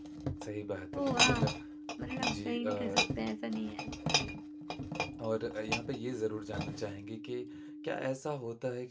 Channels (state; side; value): identical; both; correlation 1.00